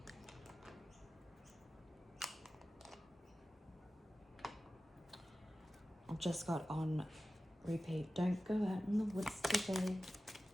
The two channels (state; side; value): normal; both; correlation 0.95